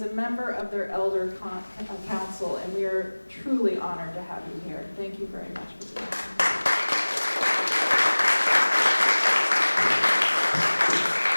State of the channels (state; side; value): inverted; both; correlation -1.00